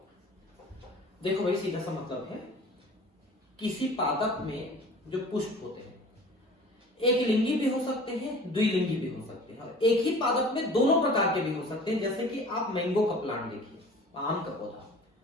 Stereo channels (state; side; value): normal; both; correlation 0.44